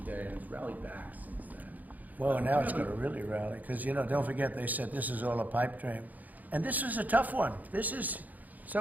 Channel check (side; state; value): left; late; 0.081 ms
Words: Day, and it's rallied back since then. Well, now it's going to really rally, because, you know, don't forget, they said this is all a pipe dream. And this is a tough one. This is,